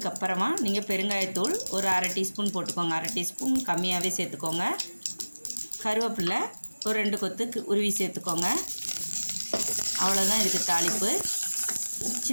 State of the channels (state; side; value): inverted; both; correlation -1.00